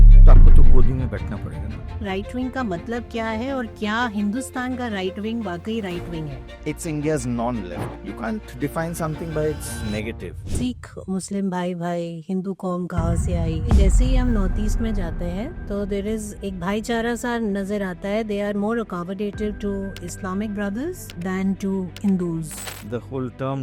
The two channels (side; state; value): both; identical; correlation 1.00